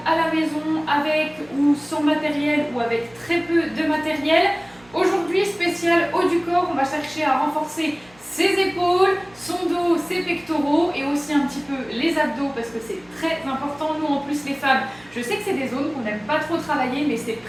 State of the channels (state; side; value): noise; right; hum, 28 dB below the sound